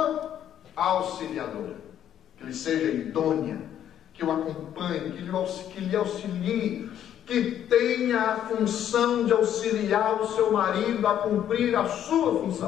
auxiliadora, que lhe seja idônea, que o acompanhe, que lhe auxilie, que tenha a função de auxiliar o seu marido a cumprir a sua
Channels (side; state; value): right; quieter; 10.4 dB